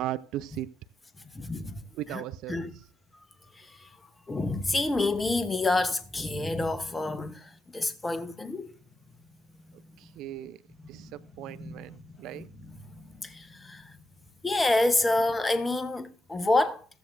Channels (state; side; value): normal; both; correlation 0.88